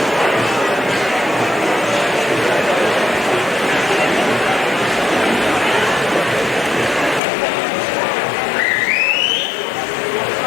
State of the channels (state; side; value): drops out; right; at 7.2 s